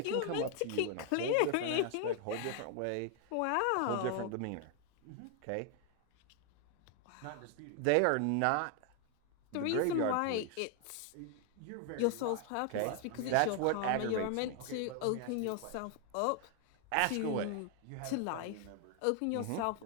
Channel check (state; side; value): different; both; correlation 0.00